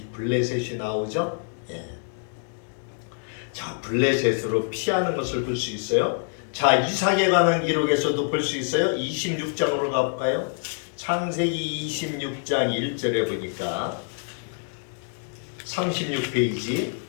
블레셋이 나오죠? 자, 블레셋으로 피하는 것을 볼 수 있어요. 자, 이삭에 관한 기록에서도 볼 수 있어요. 26장으로 가볼까요? 창세기 26장 1절에 보니까 36페이지,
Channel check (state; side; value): silent; right; 58 dB below the other